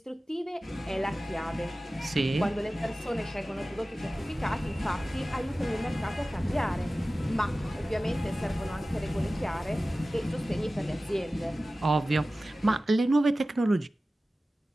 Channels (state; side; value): normal; both; correlation 0.96